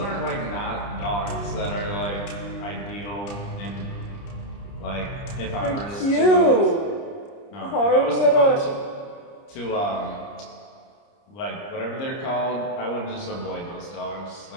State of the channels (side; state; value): right; late; 30 ms